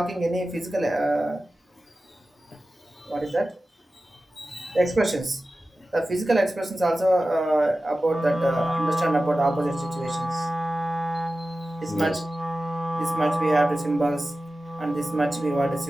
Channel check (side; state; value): both; normal; correlation 0.94